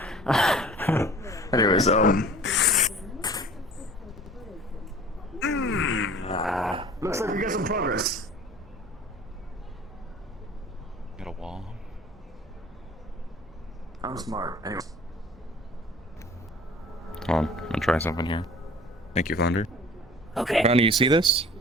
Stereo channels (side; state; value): both; normal; correlation 0.46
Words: Anyways, looks like we got some progress. Got a wall. I'm smart. Anyway. Hold on. I'm gonna try something here. Thank you, Flounder. Okay. Ronnie, you see this?